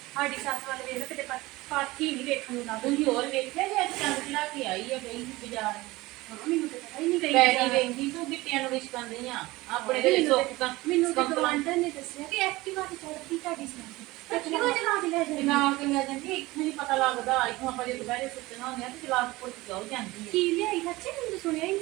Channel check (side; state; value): left; quieter; 20.1 dB